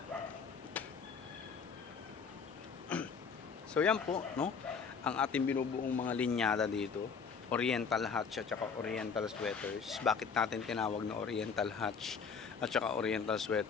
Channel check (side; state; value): right; quieter; 5.9 dB